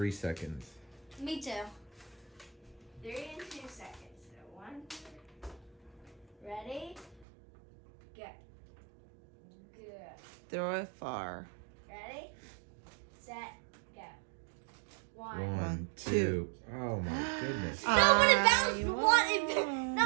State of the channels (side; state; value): left; drops out; at 7.2 s